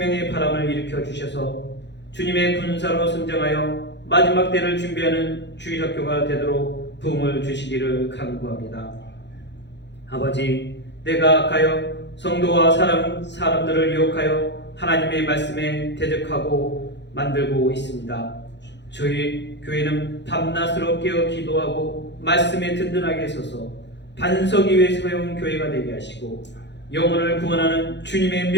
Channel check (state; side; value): late; right; 0.51 ms